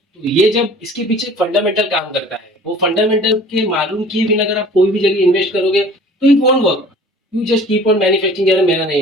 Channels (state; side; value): normal; both; correlation 0.47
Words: तो ये जब इसके पीछे फंडामेंटल काम करता है, वो फंडामेंटल के मालूम किए बिना अगर आप कोई भी जगह इन्वेस्ट करोगे तो it won't work. You just keep on manufacturing, यार मेरा नहीं